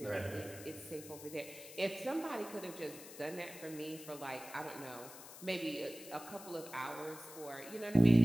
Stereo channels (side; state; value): left; noise; hiss, 15 dB below the sound